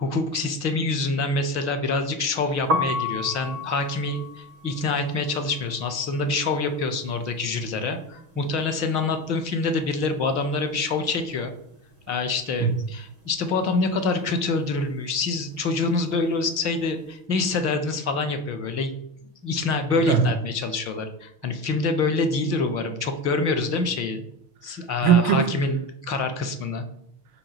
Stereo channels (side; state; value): left; late; 6.4 ms